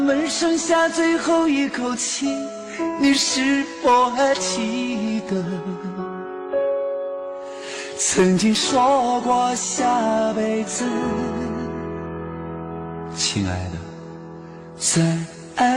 剩下最后一口气，你是否还记得曾经说过下辈子，亲爱的，再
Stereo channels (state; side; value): identical; both; correlation 1.00